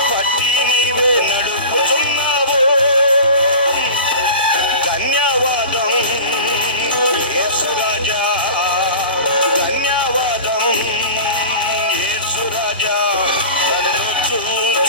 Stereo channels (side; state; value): both; inverted; correlation -0.35